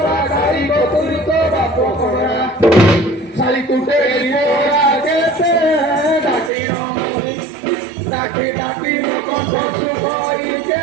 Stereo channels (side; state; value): left; drops out; at 6.5 s